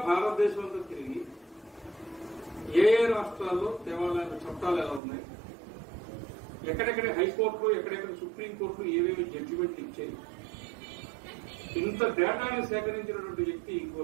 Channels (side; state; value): left; drops out; at 5.0 s